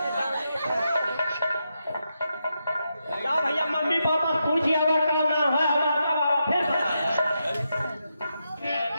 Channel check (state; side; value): inverted; both; correlation -0.85